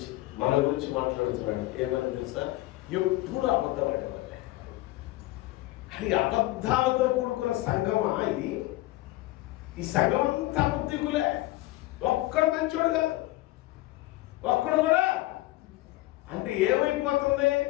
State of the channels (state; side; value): quieter; right; 18.2 dB